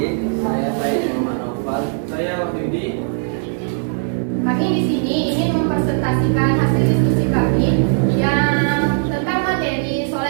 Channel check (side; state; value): left; silent; 67 dB below the other